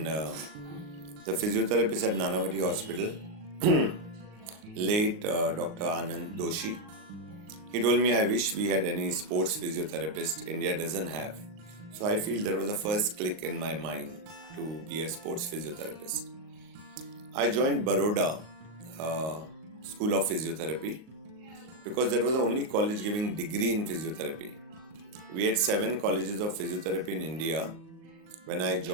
the physiotherapist at Nanavati Hospital, late Dr. Anand Doshi, he told me, I wish we had any sports physiotherapist. India doesn't have. So I feel there was a first click in my mind to be a sports physiotherapist. I joined Baroda School of Physiotherapy because that was the only college giving degree in physiotherapy. We had 7 colleges of physiotherapy in India when I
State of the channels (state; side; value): late; left; 38 ms